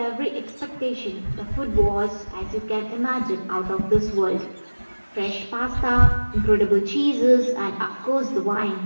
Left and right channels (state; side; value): inverted; both; correlation -1.00